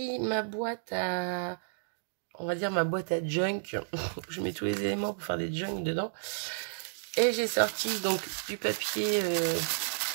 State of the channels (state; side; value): silent; left; digital silence